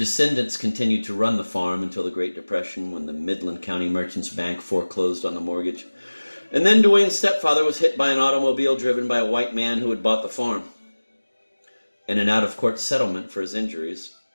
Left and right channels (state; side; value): inverted; both; correlation -1.00